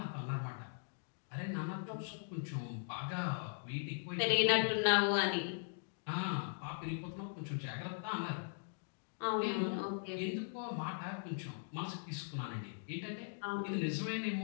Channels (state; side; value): silent; right; digital silence